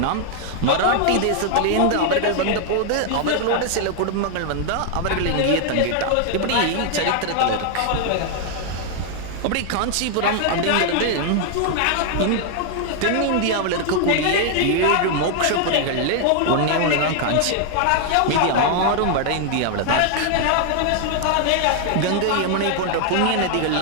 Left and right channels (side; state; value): both; different; correlation 0.00